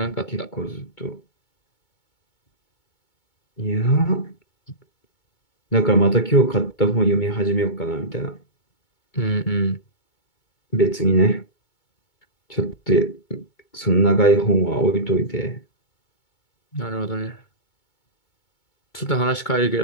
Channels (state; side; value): late; right; 2.2 ms